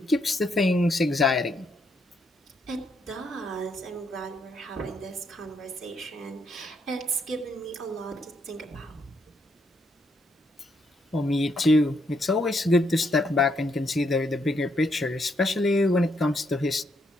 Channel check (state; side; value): normal; both; correlation 0.75